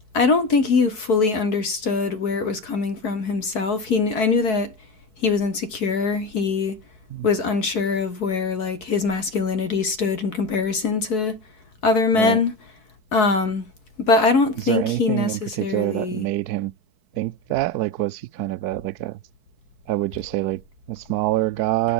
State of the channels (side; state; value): right; late; 4.6 ms